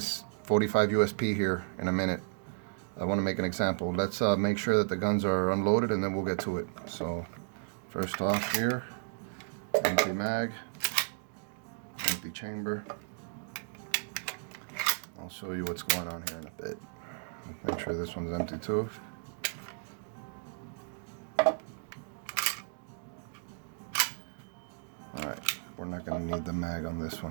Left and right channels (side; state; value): left; silent; digital silence